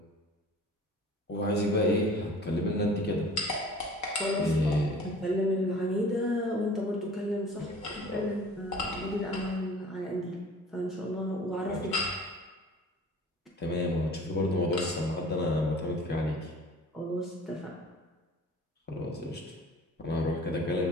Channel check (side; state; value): both; normal; correlation 0.46